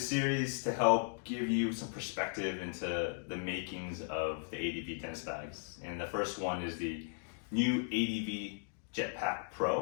series to help give you some perspective into the makings of the ADV tennis bags. And the first one is the new ADV Jetpack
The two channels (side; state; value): right; silent; digital silence